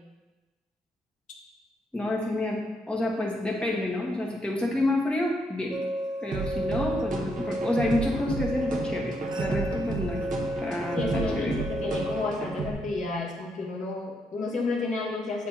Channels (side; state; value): both; normal; correlation 0.78